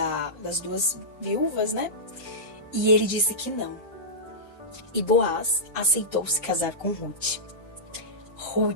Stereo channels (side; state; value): both; normal; correlation -0.14